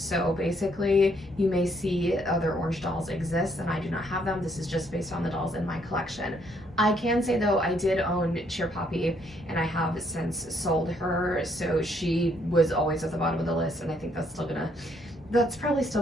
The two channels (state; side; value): normal; both; correlation 0.70